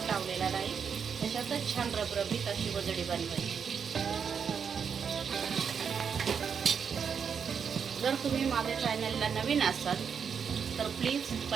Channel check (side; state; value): left; quieter; 6.8 dB